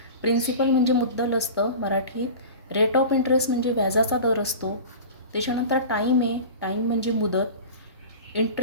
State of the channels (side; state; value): both; inverted; correlation -0.34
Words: प्रिन्सिपल म्हणजे मुद्दल असतं मराठीत. रेट ऑफ इंटरेस्ट म्हणजे व्याजाचा दर असतो. त्याच्यानंतर टाईम आहे, टाईम म्हणजे मुदत.